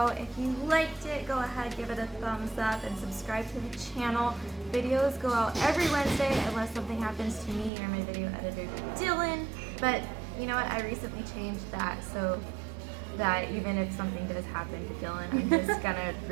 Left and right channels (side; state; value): left; drops out; at 7.7 s